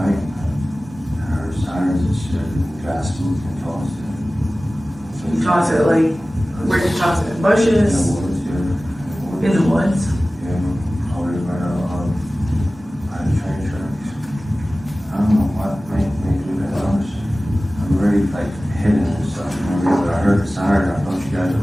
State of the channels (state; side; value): normal; both; correlation 0.97